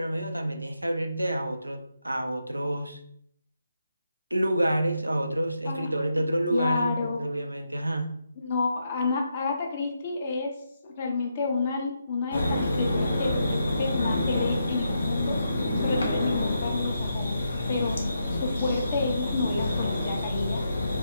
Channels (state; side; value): inverted; both; correlation -0.82